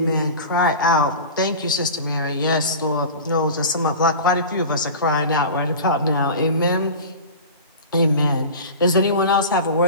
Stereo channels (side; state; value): both; inverted; correlation -0.33